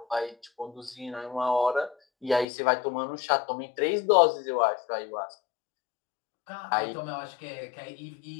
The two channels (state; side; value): drops out; right; at 2.5 s